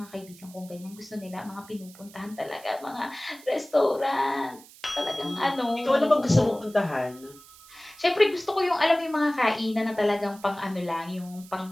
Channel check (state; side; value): noise; right; hiss, 21 dB below the sound